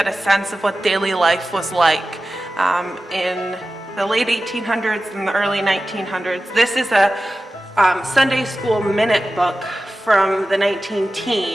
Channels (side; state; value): both; normal; correlation 0.94